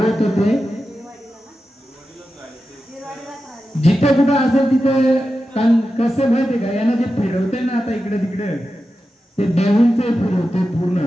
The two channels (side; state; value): both; normal; correlation 0.91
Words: होते जिथे कुठं असेल तिथे कसं माहितीये का यांना जे फिरवते ना आता इकडे तिकडे ते देऊनचे फिरवते पूर्ण